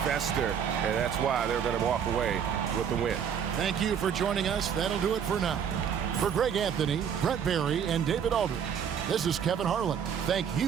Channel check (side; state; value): left; quieter; 7.9 dB